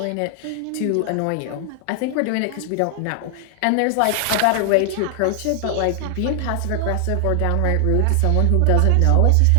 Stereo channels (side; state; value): both; different; correlation 0.00